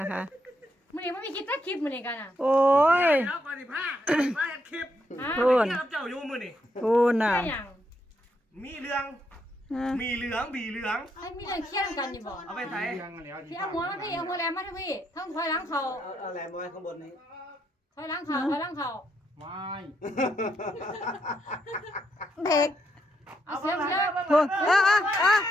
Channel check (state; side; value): normal; both; correlation 0.77